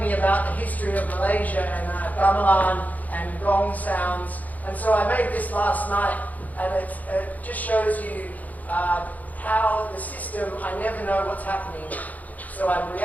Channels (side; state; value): right; late; 0.078 ms